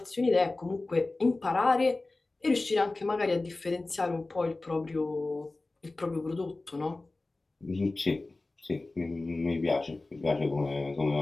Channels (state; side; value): quieter; right; 3.2 dB